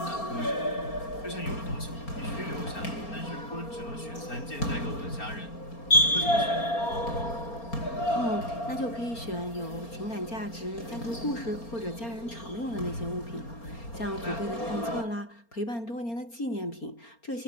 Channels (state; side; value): late; right; 4.3 ms